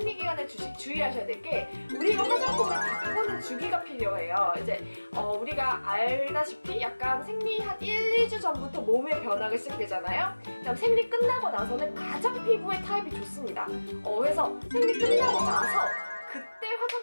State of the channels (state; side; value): inverted; both; correlation -1.00